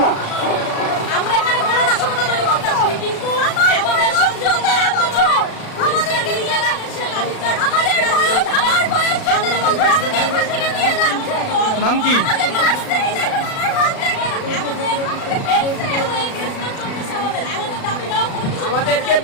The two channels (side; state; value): right; late; 36 ms